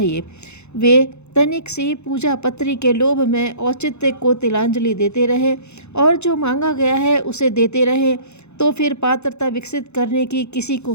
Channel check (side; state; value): right; late; 0.81 ms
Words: वे तनिक सी पूजा पत्री के लोभ में औचित्य को तिलांजलि देते रहे और जो मांगा गया है उसे देते रहे तो फिर पात्रता विकसित करने की किसी